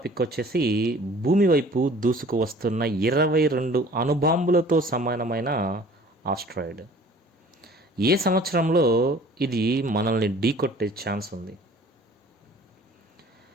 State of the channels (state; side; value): normal; both; correlation 0.50